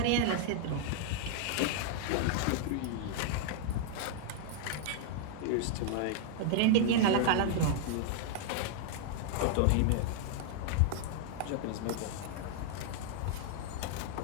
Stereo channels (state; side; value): different; both; correlation -0.01